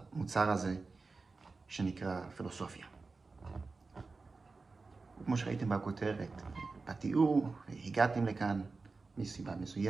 הזה שנקרא פילוסופיה. כמו שראיתם בכותרת, בתיאור, הגעתם לכאן מסיבה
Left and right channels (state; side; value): quieter; left; 4.0 dB